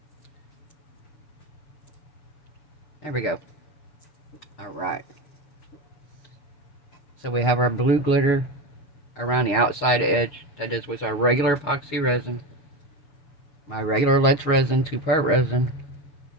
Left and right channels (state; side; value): late; right; 7.0 ms